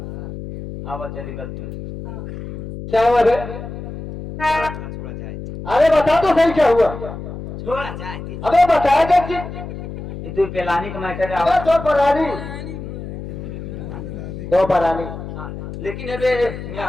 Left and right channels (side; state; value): left; noise; hum, 9 dB below the sound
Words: आओ चली गलती है क्या हुआ रे छोड़ा जाए अरे बता तो सही क्या हुआ छोड़ा जाए अबे बताया क्या कि ये दो पेलानी का मैटर है अबे दो परानी लेकिन अबे